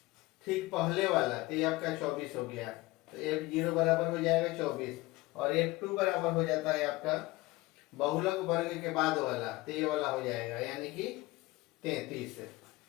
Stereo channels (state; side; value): quieter; right; 20.5 dB